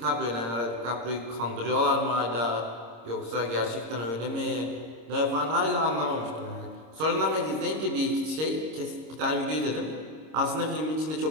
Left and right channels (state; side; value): late; left; 26 ms